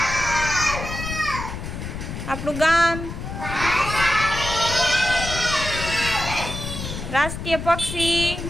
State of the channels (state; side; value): noise; left; rumble, 7 dB below the sound